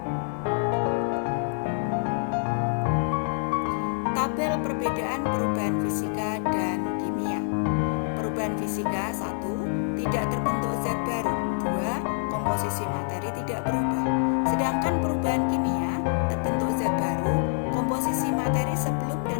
Tabel perbedaan perubahan fisika dan kimia. Perubahan fisika: 1. Tidak terbentuk zat baru. 2. Komposisi materi tidak berubah. Sedangkan perubahan kimia: terbentuk zat baru, komposisi materi sebelum dan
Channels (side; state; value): right; silent; digital silence